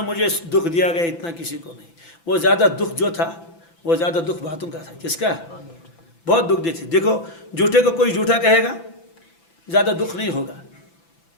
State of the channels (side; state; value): right; late; 5.9 ms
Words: मुझे दुख दिया गया इतना किसी को नहीं। वो ज़्यादा दुख जो था वो ज़्यादा दुख बातों का था। किसका? बहुत दुख देते। देखो झूठे को कोई झूठा कहेगा ज़्यादा दुख नहीं होगा।